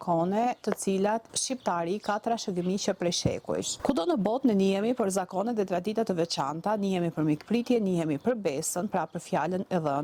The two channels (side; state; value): both; identical; correlation 1.00